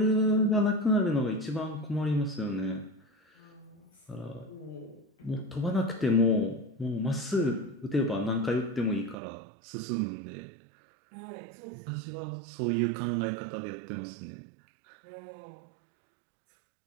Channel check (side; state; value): left; drops out; at 9.2 s